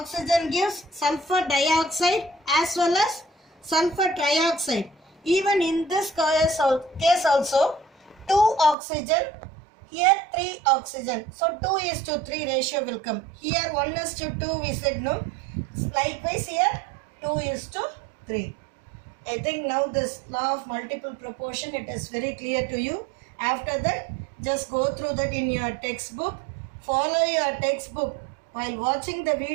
gives sulfur dioxide as well as sulfur trioxide. Even in this case also 2 oxygen, here 3 oxygen. So 2:3 ratio will come. Here 1:2 we said no. Likewise here 2:3. I think now this law of multiple proportion it is very clear to you. After that just go through that in your textbook. Follow your textbook. While watching the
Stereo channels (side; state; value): left; drops out; at 8.8 s